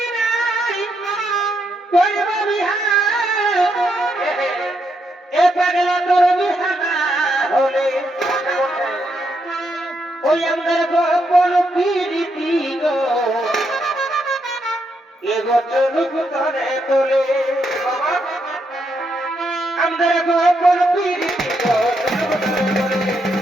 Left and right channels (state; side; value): normal; both; correlation 0.79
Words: নাই করিবা বিহার এ পাগলা তোর বিহানা হলে ওই আমাদের গোপন পিরিতি গো এগো চলুক ধরে তোলে আমাদের গোপন পিরিতি গো চলুক ধরে তোলে